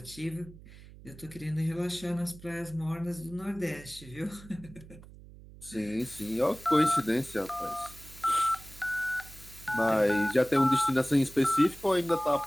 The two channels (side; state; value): right; noise; hum, 19 dB below the sound